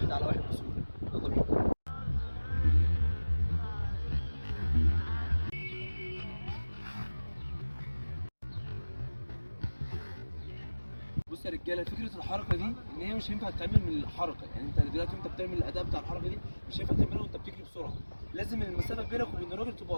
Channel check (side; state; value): both; inverted; correlation -1.00